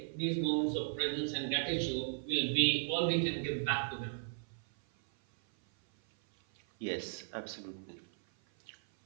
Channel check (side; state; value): left; silent; 54 dB below the other